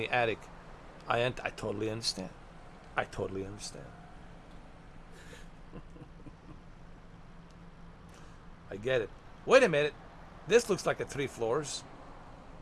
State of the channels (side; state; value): both; identical; correlation 1.00